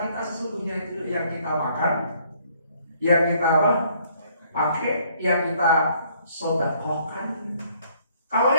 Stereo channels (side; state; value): both; inverted; correlation -0.64